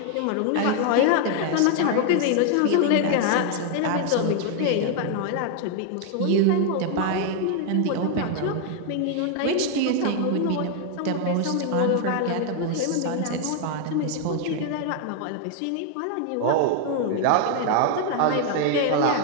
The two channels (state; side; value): different; both; correlation 0.00